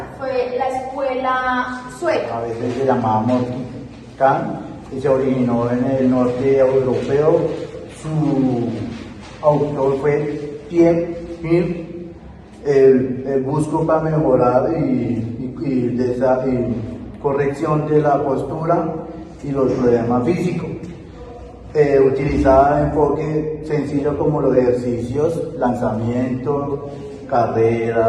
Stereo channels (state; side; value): identical; both; correlation 1.00